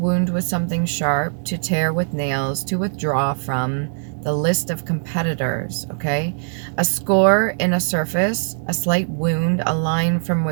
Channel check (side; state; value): left; silent; digital silence